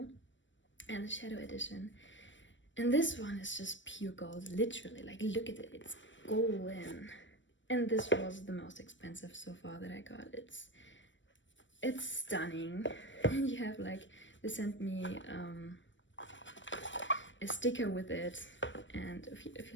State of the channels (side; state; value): right; late; 0.55 ms